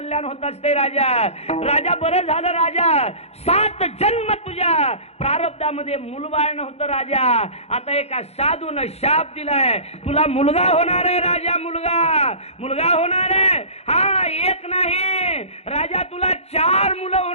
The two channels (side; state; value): right; late; 0.30 ms